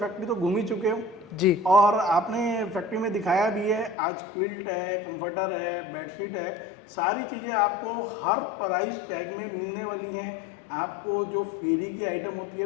तो घूम ही चुके हो जी। और आपने फैक्ट्री में दिखाया भी है। आज क्विल्ट है, कंफर्टर है, बेडशीट है, सारी चीज़ें आपको हर प्राइस टैग में मिलने वाली हैं। आपको जो फेरी की आइटम होती है,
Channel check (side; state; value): right; drops out; at 4.0 s